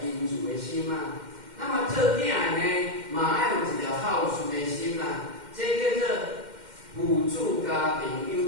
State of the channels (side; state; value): left; late; 2.1 ms